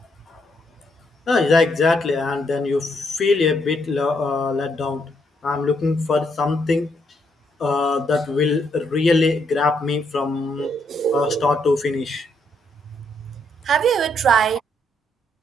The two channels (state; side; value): normal; both; correlation 0.75